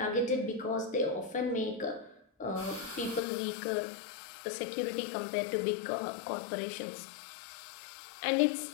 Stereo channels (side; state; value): right; drops out; at 3.2 s